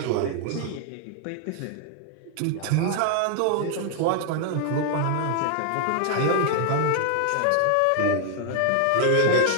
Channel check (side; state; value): both; different; correlation 0.00